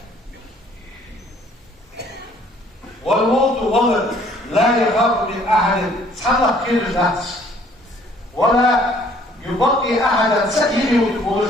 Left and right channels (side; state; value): both; normal; correlation 0.59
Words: والموت ولد لا يخاف من أحد سحلق كير الناس ولا يبقي أحدا سكينه وتقول